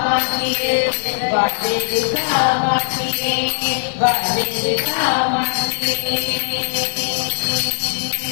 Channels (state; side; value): silent; right; 61 dB below the other